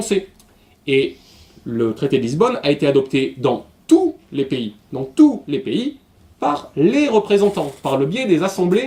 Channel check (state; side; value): identical; both; correlation 1.00